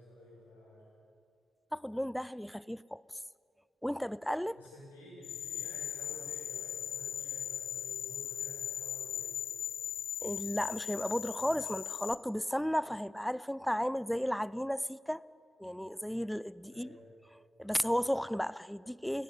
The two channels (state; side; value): normal; both; correlation 0.93